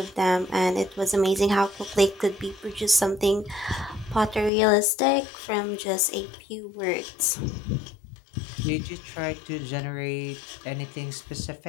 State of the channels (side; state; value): right; drops out; at 4.5 s